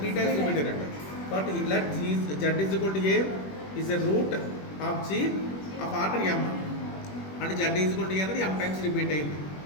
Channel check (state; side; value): late; right; 21 ms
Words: 3 టైమ్స్ రిపీట్ అయినట్టు. కాబట్టి let G Z is equal to A is a root of G of order M. అంటే Z is equal to A అనేది ఎమ్ టైమ్స్ రిపీట్ అయింది.